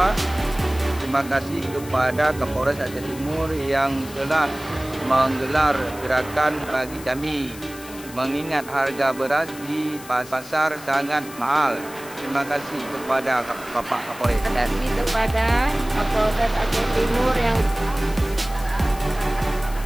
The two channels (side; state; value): left; noise; hiss, 16 dB below the sound